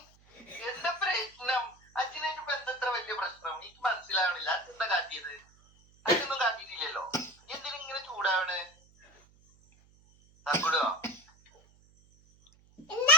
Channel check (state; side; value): noise; right; hum, 29 dB below the sound